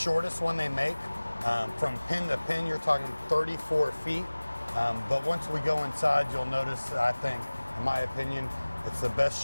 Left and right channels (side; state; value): both; inverted; correlation -1.00